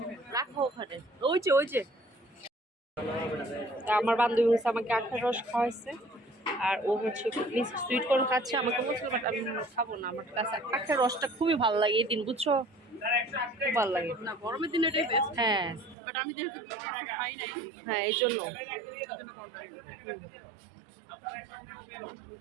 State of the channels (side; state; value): left; drops out; at 16.0 s